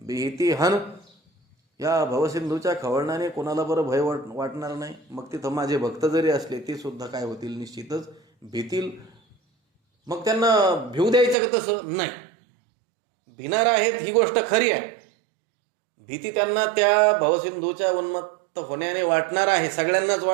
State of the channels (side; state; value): left; drops out; at 11.4 s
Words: हन. या भवसिंधूच्या खवळण्याने कोणाला बरं भय वाटणार नाही. मग तिथं माझे भक्त जरी असले ते सुद्धा काय होतील, निश्चितच भीतील. मग त्यांना भिऊ द्यायचं का? तसं नाही. भिणार आहेत ही गोष्ट खरी आहे. भीती त्यांना त्या भवसिंधूच्या उन्मत्त होण्याने वाटणार आहे, सगळ्यांनाच